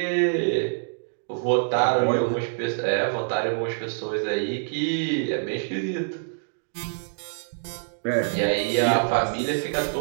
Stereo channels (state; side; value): silent; left; digital silence